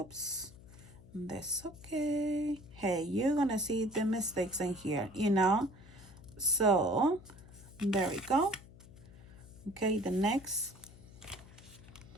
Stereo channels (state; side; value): noise; left; hum, 20 dB below the sound